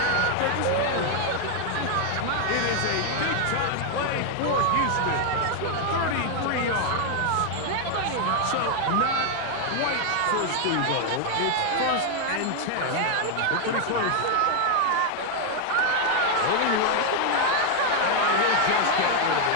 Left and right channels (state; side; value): different; both; correlation 0.00